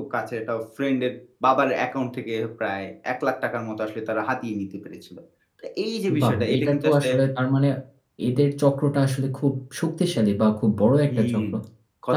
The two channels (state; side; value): identical; both; correlation 1.00